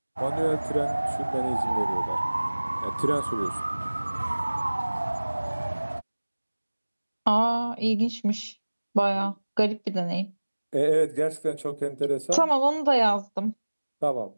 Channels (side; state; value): both; inverted; correlation -1.00